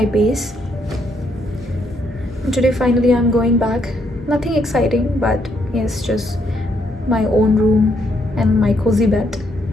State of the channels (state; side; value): normal; both; correlation 0.74